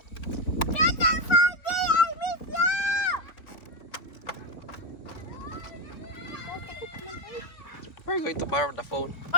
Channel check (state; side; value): late; right; 3.8 ms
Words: We're going to borrow the phone.